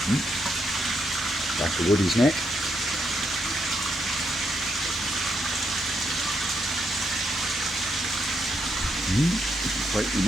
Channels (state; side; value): normal; both; correlation 0.78